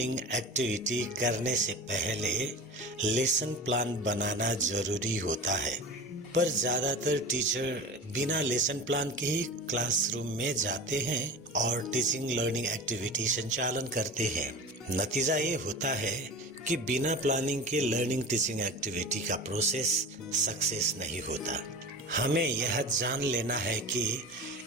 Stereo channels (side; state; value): both; normal; correlation 0.32